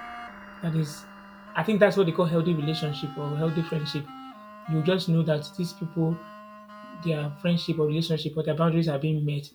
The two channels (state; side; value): identical; both; correlation 1.00